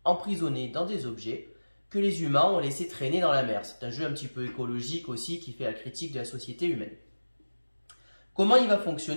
emprisonnés dans des objets que les humains ont laissé traîner dans la mer. C'est un jeu un petit peu écologique aussi qui fait la critique de la société humaine. Comment il va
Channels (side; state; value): both; inverted; correlation -1.00